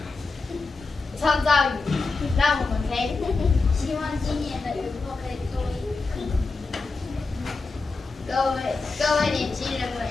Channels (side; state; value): right; quieter; 3.9 dB